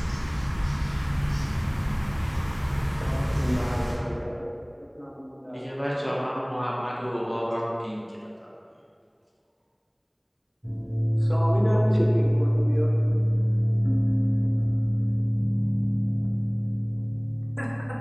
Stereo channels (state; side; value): identical; both; correlation 1.00